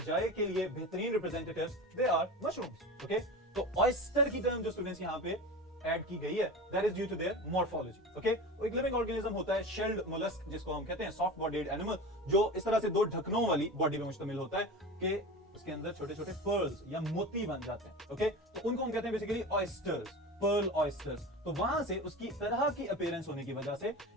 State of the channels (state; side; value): normal; both; correlation 0.30